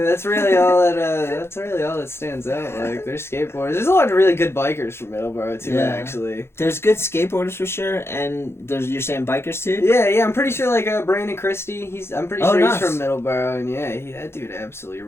that's really all that stands out. Like, there's skateboarders. There's a lot of really good bikers from Middleborough too, actually. There's good skateboarders for sure, and you're saying bikers too? Yeah, I'm pretty sure, like, Brandon Christie, I'm pretty sure nice. he's from Middleborough, and yeah, that dude absolutely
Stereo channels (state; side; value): late; right; 0.12 ms